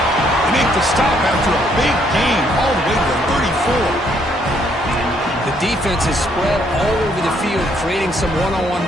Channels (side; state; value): both; normal; correlation 0.69